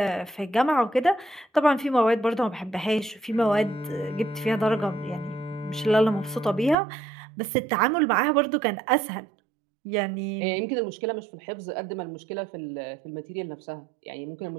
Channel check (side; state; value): left; drops out; at 6.8 s